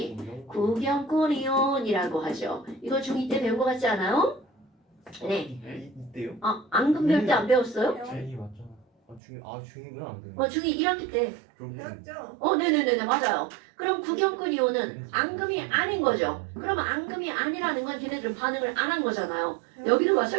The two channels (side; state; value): left; drops out; at 9.2 s